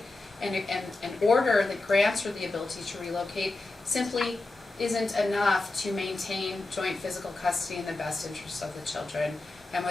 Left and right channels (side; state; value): right; quieter; 3.1 dB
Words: and an order that grants her the ability to relocate simply isn't enough to maintain joint physical custody in the best interests of the children. And